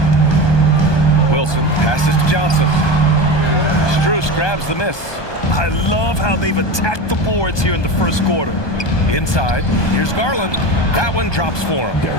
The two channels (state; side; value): late; right; 1.2 ms